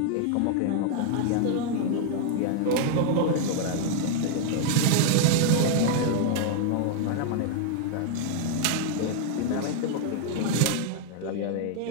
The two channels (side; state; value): both; different; correlation 0.00